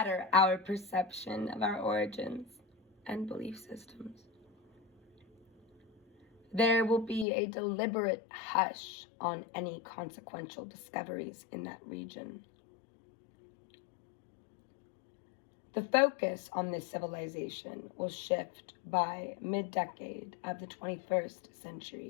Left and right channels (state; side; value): drops out; right; at 7.2 s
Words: our perception of our origins and belief systems. There will be a deliberate hush on any consequential discoveries in that region. The focus on this civilization will shift by mid-decade of the 21st